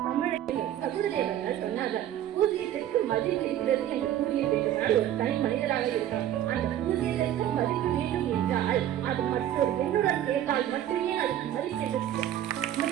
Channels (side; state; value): left; quieter; 11.7 dB